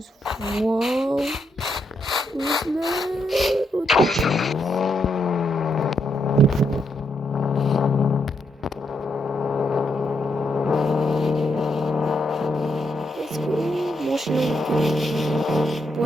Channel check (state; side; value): normal; both; correlation 0.79